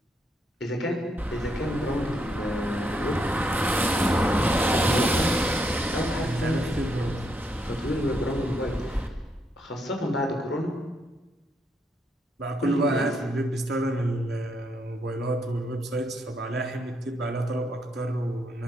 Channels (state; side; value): normal; both; correlation 0.76